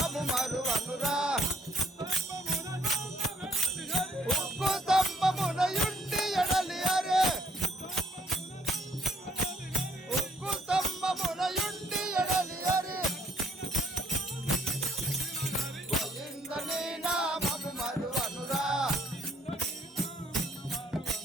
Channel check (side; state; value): both; normal; correlation 0.67